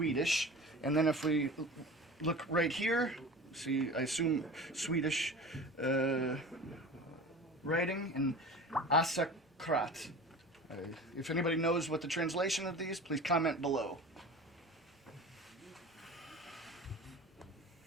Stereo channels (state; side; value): normal; both; correlation 0.36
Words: And then if we look right here, see, I assume Swedish writing, and Asakrat. If anybody knows what the translation of these, please comment below.